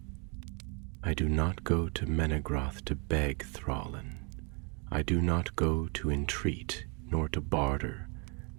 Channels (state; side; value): quieter; left; 34.0 dB